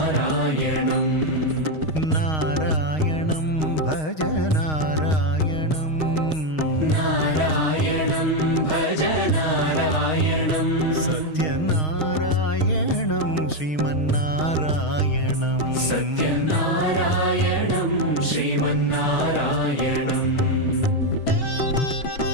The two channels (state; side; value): late; right; 6.4 ms